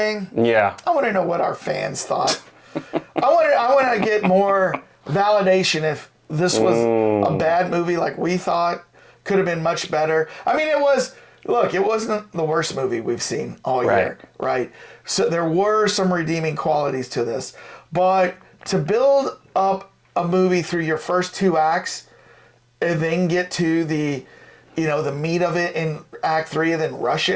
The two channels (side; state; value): both; identical; correlation 1.00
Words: Yeah. I want to know what our fans thought. I want to get more validation if this was a bad movie like we thought. Could have been much better. I mean, it wasn't the worst movie we've seen all year, right? So there were some redeeming qualities to this. But to build up a movie through your first 2 acts and then get to the meat of it in Act 3 and then rush